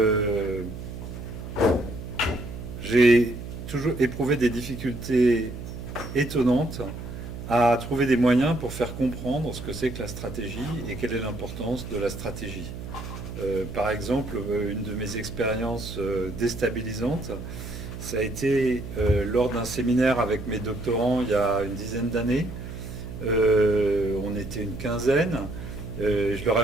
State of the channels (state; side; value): noise; right; hum, 9 dB below the sound